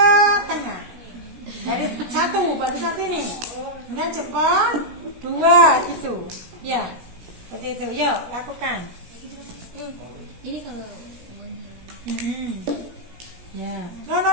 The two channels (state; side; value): late; left; 17 ms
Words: tengah. Dari satu, baru satu ini. Kemudian jempol, dua gitu. Ya, seperti itu. Yuk, lakukan. Ini kalau Ya. No.